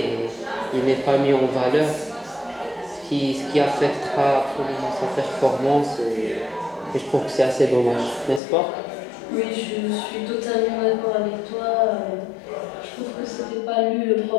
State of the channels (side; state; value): right; drops out; at 8.4 s